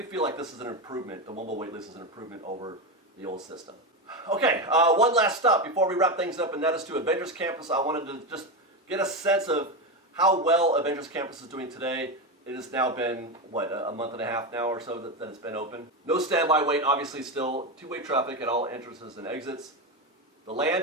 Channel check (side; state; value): both; normal; correlation 0.14